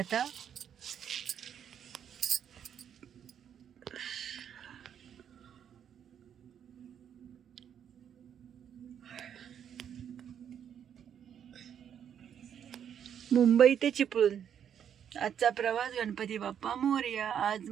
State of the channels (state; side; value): quieter; left; 8.8 dB